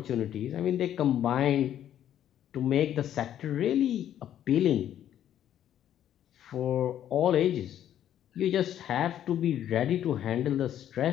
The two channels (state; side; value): quieter; right; 10.8 dB